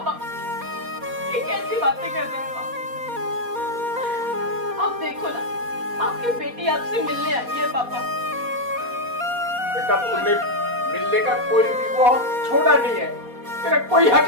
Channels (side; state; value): left; late; 4.2 ms